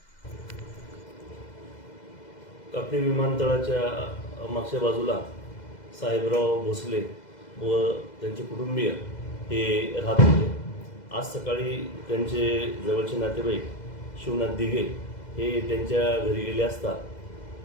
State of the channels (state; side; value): late; right; 2.0 ms